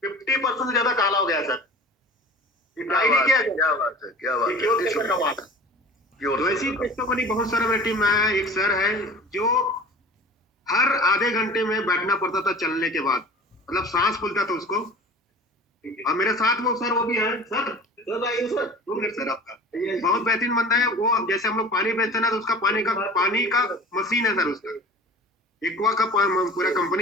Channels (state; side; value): normal; both; correlation 0.41